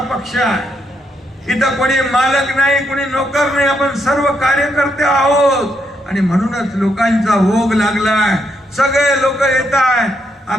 पक्ष आहे. इथं कोणी मालक नाही, कोणी नोकर नाही, आपण सर्व कार्यकर्ते आहोत. आणि म्हणूनच लोकांचा ओघ लागलाय. सगळे लोक येत आहेत.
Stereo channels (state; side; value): normal; both; correlation 0.78